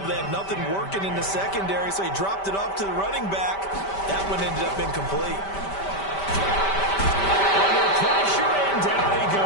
but they had nothing working in the secondary, so he dropped it off to the running back. That one ended up incomplete. Under pressure, and down he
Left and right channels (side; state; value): right; late; 5.1 ms